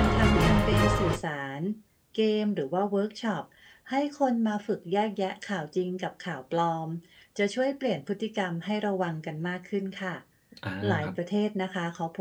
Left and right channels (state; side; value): identical; both; correlation 1.00